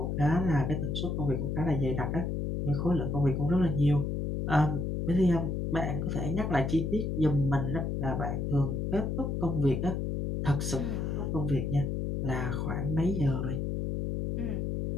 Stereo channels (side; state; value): left; noise; hum, 1 dB below the sound